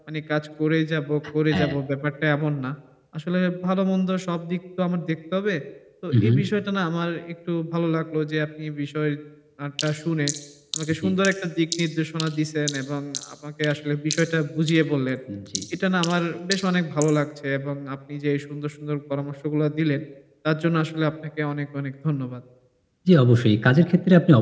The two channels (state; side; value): identical; both; correlation 1.00